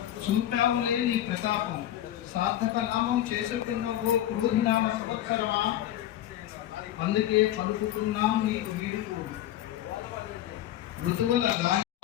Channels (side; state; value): right; quieter; 12.7 dB